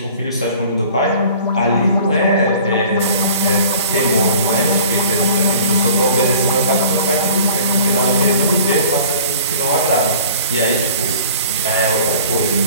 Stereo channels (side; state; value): both; inverted; correlation -0.47